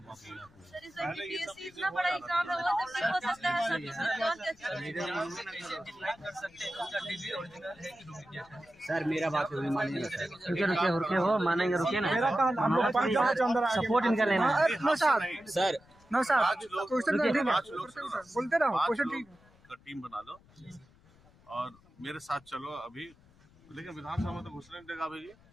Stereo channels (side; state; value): left; noise; rumble, 28 dB below the sound